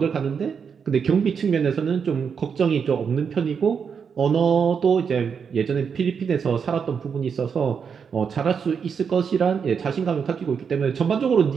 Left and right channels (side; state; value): left; quieter; 6.5 dB